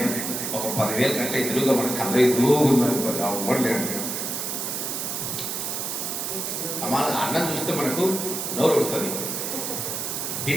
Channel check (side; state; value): right; noise; hiss, 3 dB below the sound